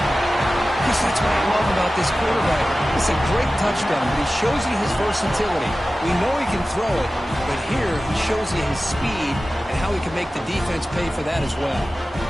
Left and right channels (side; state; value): both; normal; correlation 0.95